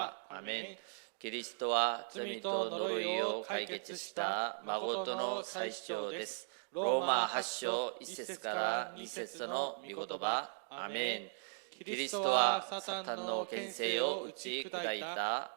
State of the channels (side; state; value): left; silent; digital silence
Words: 아멘. 그리스도와 罪と呪いを解決した誠の最主張です。 로마 8章 1節から2節の御言葉。 아멘. キリストはサタンの権勢を打ち砕いた